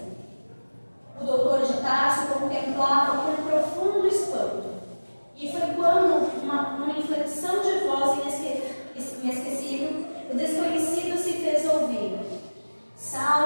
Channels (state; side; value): inverted; both; correlation -1.00